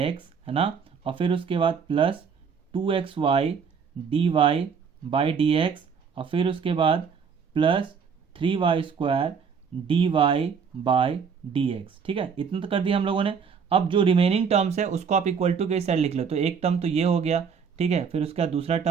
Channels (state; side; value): quieter; left; 6.4 dB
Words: है ना, और फिर उसके बाद प्लस 2xy dy/dx और फिर उसके बाद प्लस 3y² dy/dx, ठीक है। इतना तो कर दिया हम लोगों ने। अब जो रिमेनिंग टर्म्स है उसको आप इक्वल टू के साइड लिख लो। तो एक टर्म तो ये हो गया, ठीक है, फिर उसका दूसरा